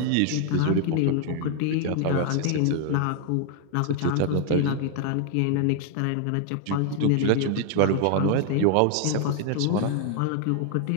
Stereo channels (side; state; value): both; different; correlation 0.00